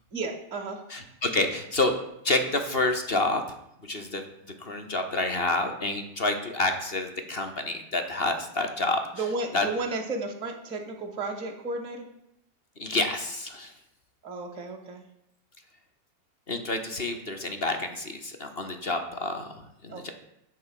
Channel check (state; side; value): late; right; 2.8 ms